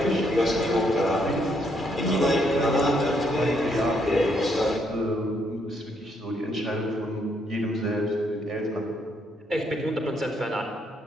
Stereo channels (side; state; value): both; normal; correlation 0.73